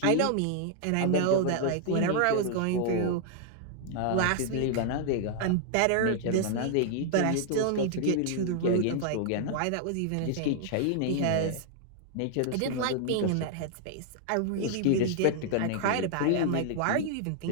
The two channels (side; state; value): both; different; correlation 0.00